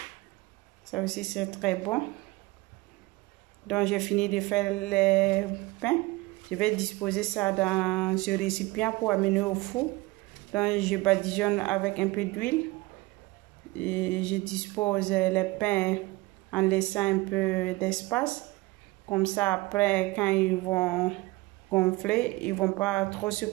Ça aussi, c'est très bon. Donc, j'ai fini de faire les pains. Je vais disposer ça dans ce récipient pour amener au four. Donc, je badigeonne avec un peu d'huile. Et je dispose les pains en laissant un peu d'espace. Comme ça, après, quand ils vont gonfler, ils ne vont pas trop se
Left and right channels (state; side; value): quieter; left; 21.7 dB